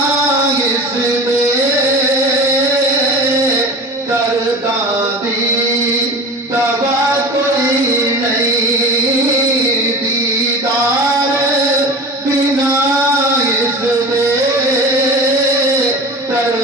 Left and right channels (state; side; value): normal; both; correlation 0.34